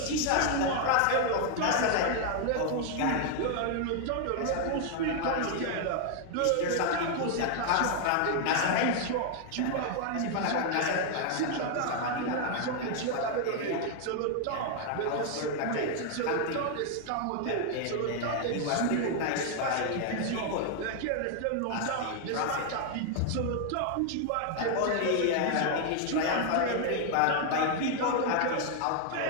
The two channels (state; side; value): different; both; correlation 0.00